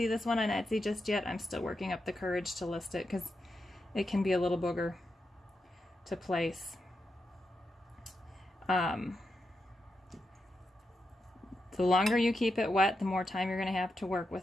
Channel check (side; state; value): both; normal; correlation 0.86